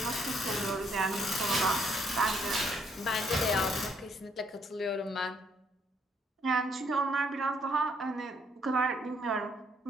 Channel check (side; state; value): both; normal; correlation 0.69